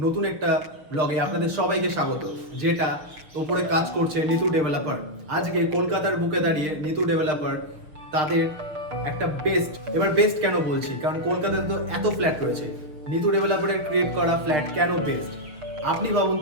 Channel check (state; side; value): late; left; 6.4 ms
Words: নতুন একটা ব্লগে আপনাদের সবাইকে স্বাগত। যেটা ওপরে কাজ করছে নিতু ডেভেলপার। আজকে কলকাতার বুকে দাঁড়িয়ে নিতু ডেভেলপার তাদের একটা বেস্ট কেন বলছি, কারণ কলকাতাতে তো এত ফ্ল্যাট রয়েছে, নিতু ডেভেলপারের ক্রিয়েট করা ফ্ল্যাট কেন বেস্ট। আপনি ভাবুন